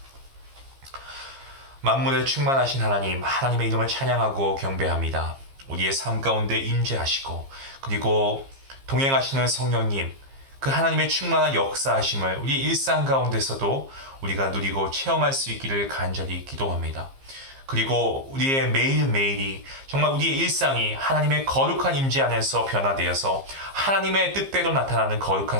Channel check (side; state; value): left; late; 15 ms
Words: 만물에 충만하신 하나님, 하나님의 이름을 찬양하고 경배합니다. 우리의 삶 가운데 임재하시고 그리고 동행하시는 성령님, 그 하나님의 충만한 역사하심을 우리 일상 가운데서도 우리가 누리고 체험할 수 있기를 간절히 기도합니다. 그리고 우리의 매일매일이 정말 우리의 일상이 하나님의 거룩한 임재 안에서 변화되어서 하나님의 뜻대로 나타나는 거룩한